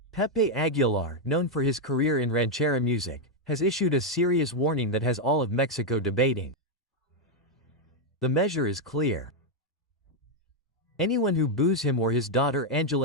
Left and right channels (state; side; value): normal; both; correlation 0.01